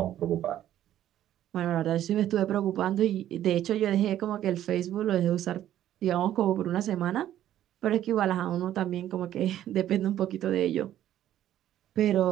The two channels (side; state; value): left; quieter; 12.0 dB